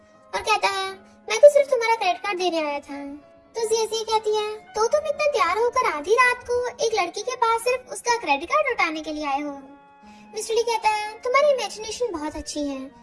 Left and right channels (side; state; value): both; identical; correlation 1.00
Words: और कहता है, मैं तो सिर्फ तुम्हारा क्रेडिट कार्ड देने आया था। तो जिया कहती है, तो तुम इतना तैयार होकर आधी रात को एक लड़की के पास सिर्फ उसका क्रेडिट कार्ड लौटाने के लिए आए हो। मिस्टर ली कहता है, तुम्हारी इमेजिनेशन बहुत अच्छी है।